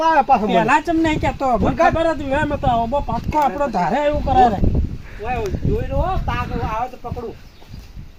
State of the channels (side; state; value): both; identical; correlation 1.00